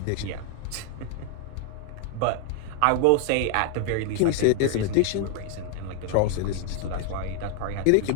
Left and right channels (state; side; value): different; both; correlation 0.00